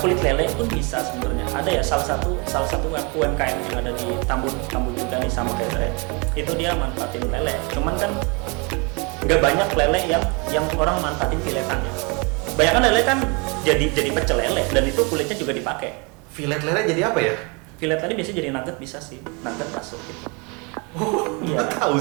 lele pun bisa sebenarnya. Ada ya salah satu UMKM yang ada di Tambun juga nih sama kayak saya. Itu dia manfaatin lele. Cuman kan nggak banyak lele yang orang manfaatin filetannya. Banyak kan lele kan jadi pecel lele dan itu kulitnya juga dipakai. Filet lele jadi apa ya? Filet lele biasanya jadi nugget, bisa sih, nugget bakso gitu. Oh, iya. Tahu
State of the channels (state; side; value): quieter; left; 31.2 dB